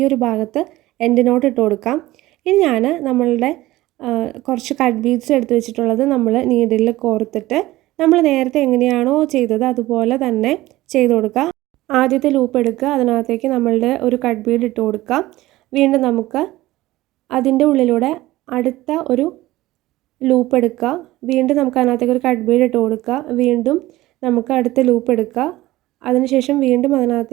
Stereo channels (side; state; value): left; quieter; 17.3 dB